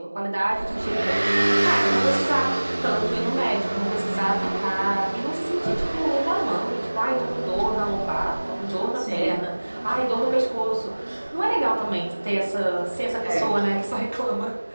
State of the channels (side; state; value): both; inverted; correlation -1.00